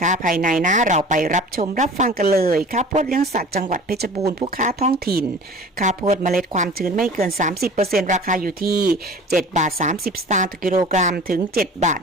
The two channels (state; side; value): normal; both; correlation 0.42